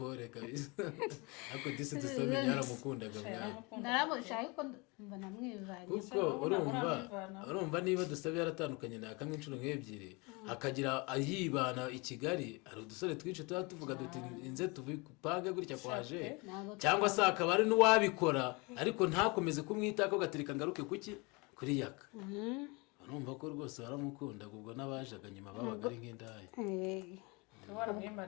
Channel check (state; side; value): quieter; right; 27.9 dB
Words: kabisa ariko disi dusome yaramukundaga mwana naramushaye ariko mba namwivanye kuko urumva niba dusabe yaratandukanye na kamwe inshuro nk'ebyiri akagira yibana i Kigali hari udusore twinshi tuba tuvuga duti inze tupange gutya kwaje cyangwa se akaba ari n'uwabikora ariko ntakomeze kumwitako gatereka ngaruke kuki kuri yaka urumva ko rwose baramukundaga ubwo n'abajaga nyuma babaga ari nk'indaya